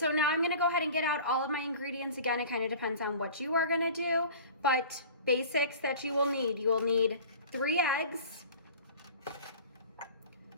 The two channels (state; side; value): inverted; both; correlation -0.41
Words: now I'm gonna go ahead and get out all of my ingredients. Again, it kind of depends on what you are gonna do, but basics that you will need 3 eggs,